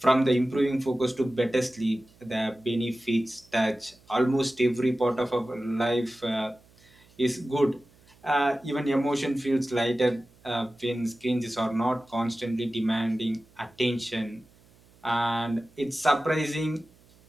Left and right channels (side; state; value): right; noise; hum, 29 dB below the sound